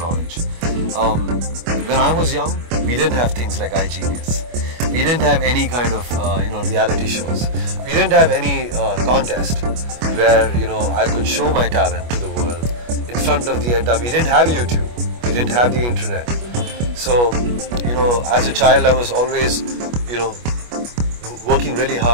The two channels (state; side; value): late; left; 25 ms